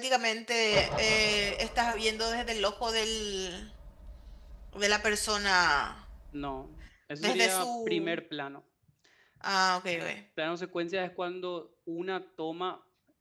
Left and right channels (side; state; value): both; identical; correlation 1.00